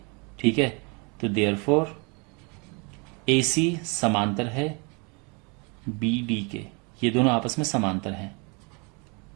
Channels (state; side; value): quieter; left; 31.7 dB